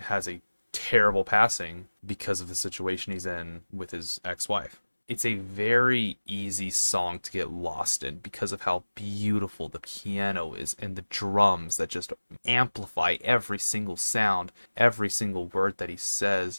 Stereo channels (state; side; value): inverted; both; correlation -1.00